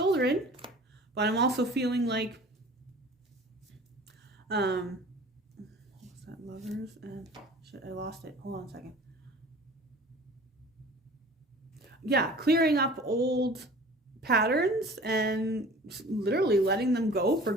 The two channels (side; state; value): both; normal; correlation 0.44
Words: But I'm also feeling like, what was that? Lovers and, shit, I lost it. Hold on a second. Yeah, clearing up old patterns and literally letting them go for